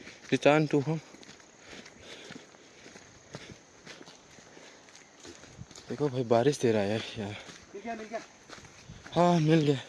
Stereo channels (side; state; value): both; identical; correlation 1.00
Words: return to home. देखो भाई बारिश दे रहा है यार। हाँ मिल गया